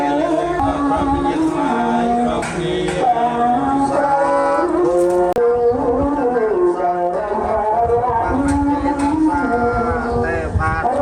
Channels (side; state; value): both; identical; correlation 1.00